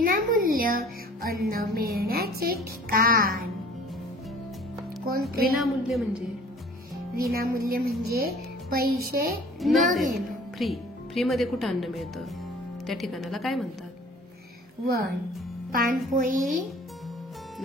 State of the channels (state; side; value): normal; both; correlation 0.49